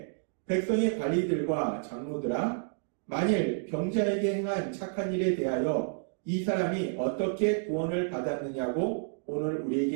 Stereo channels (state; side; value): silent; left; digital silence